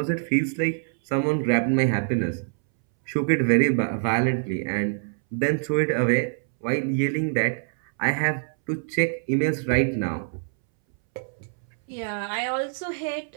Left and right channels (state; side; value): silent; left; 62 dB below the other